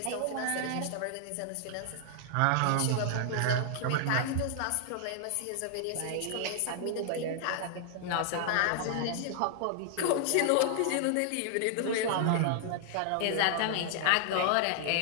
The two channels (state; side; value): different; both; correlation -0.01